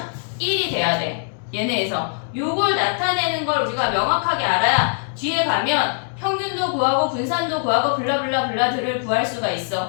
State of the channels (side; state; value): right; silent; digital silence